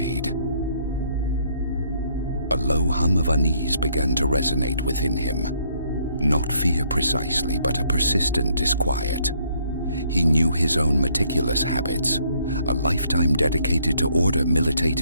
A low hum of unease began to resonate within him. Not fear precisely, but a persistent disquiet. He knew his own meticulous habits. A lifetime dedicated to order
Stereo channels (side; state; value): both; inverted; correlation -0.68